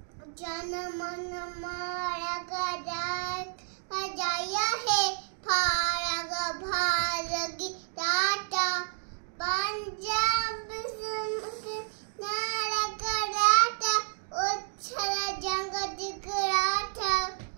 जनमन मारग जय है, फारग भारगी टाटा, पंजाब नारग राटा, उच्छल जंग दिख राटा,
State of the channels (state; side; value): silent; left; digital silence